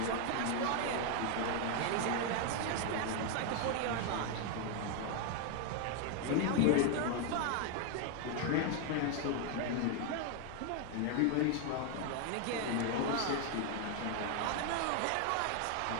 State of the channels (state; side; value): different; both; correlation 0.01